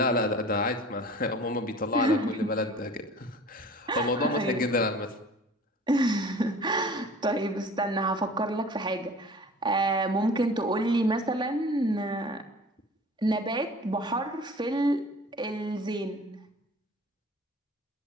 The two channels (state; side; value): normal; both; correlation 0.44